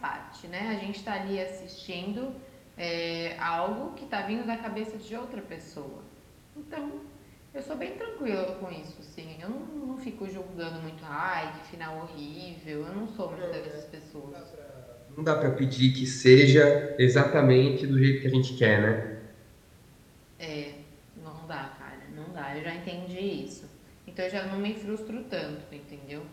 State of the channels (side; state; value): both; identical; correlation 1.00